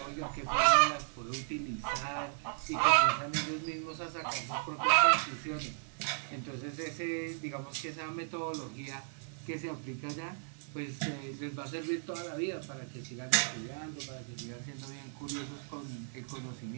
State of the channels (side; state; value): left; silent; digital silence